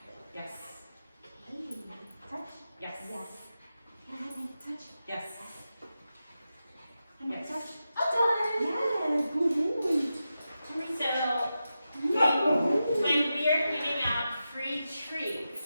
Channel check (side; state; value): both; inverted; correlation -0.90